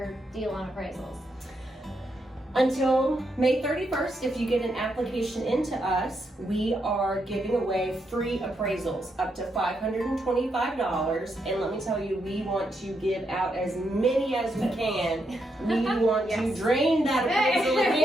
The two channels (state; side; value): normal; both; correlation 0.80